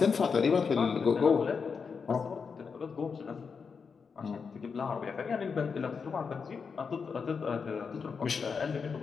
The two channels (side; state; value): right; quieter; 5.6 dB